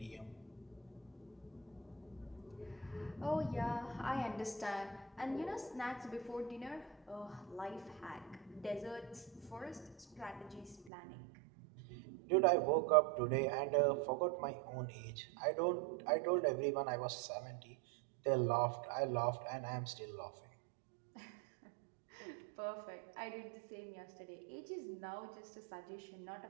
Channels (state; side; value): drops out; left; at 10.9 s